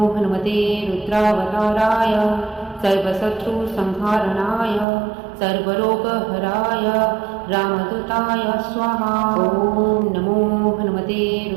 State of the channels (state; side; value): drops out; left; at 4.9 s